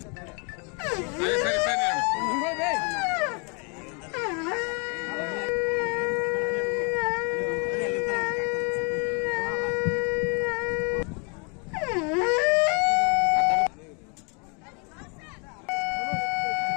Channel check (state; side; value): quieter; right; 34.3 dB